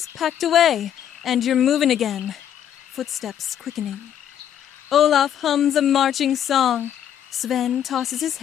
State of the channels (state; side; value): quieter; right; 9.8 dB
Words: packed away, and you're moving again, footsteps quickening. Olaf hums a marching song. Sven tosses his